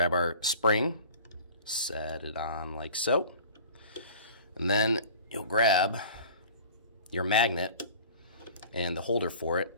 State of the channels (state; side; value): inverted; both; correlation -0.43